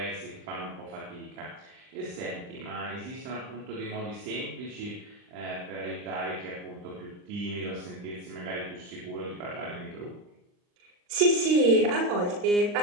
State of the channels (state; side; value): late; left; 39 ms